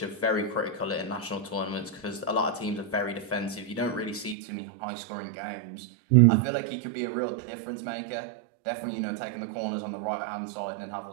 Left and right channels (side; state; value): left; drops out; at 4.4 s